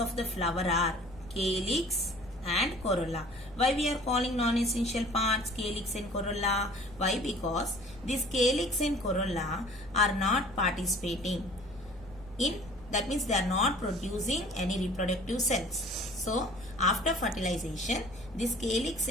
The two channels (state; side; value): noise; left; rumble, 20 dB below the sound